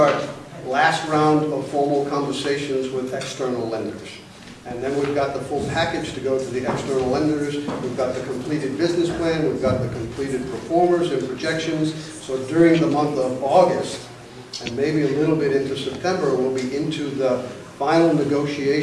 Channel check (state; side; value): identical; both; correlation 1.00